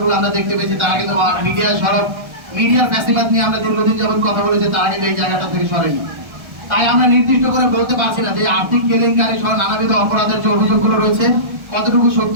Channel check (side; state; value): left; late; 1.3 ms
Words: গুলো আমরা দেখতে পেয়েছি, তারা কিন্তু মিডিয়ার ফ্যাসিবাদ নিয়ে আমরা দীর্ঘদিন যাবত কথা বলেছি, তারা কিন্তু এই জায়গাটা থেকে সরেনি। তাই আমরা নির্দিষ্ট করে বলতে পারছি না যে আর্থিক কেলেঙ্কারি সহ নানাবিধ অপরাধের যে অভিযোগগুলো রয়েছে কতটুকু সত্য